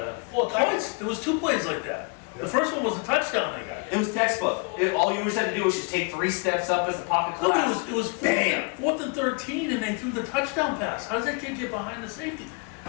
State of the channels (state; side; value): quieter; right; 32.7 dB